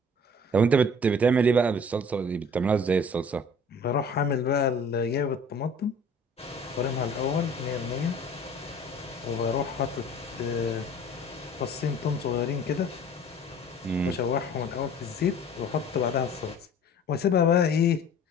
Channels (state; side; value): normal; both; correlation 0.48